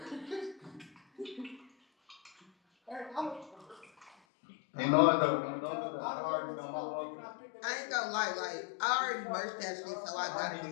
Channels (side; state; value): right; drops out; at 4.1 s